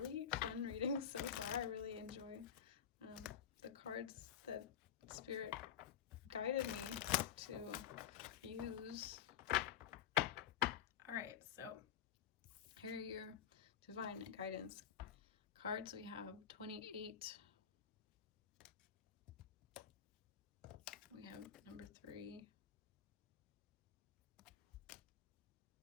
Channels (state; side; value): quieter; right; 9.0 dB